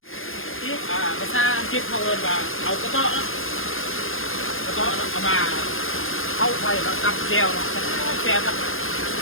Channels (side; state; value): right; late; 0.60 ms